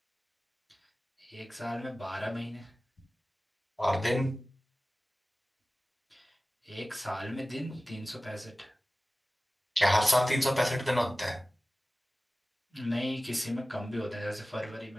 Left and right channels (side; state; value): both; normal; correlation 0.97